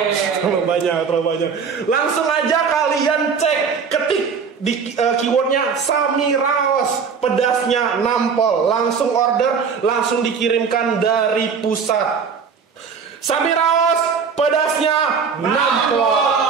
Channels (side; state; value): left; quieter; 6.0 dB